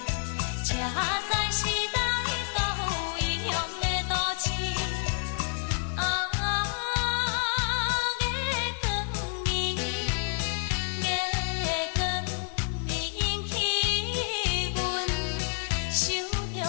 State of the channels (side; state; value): right; silent; digital silence